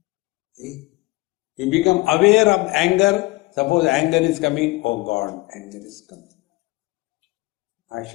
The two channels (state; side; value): quieter; right; 22.3 dB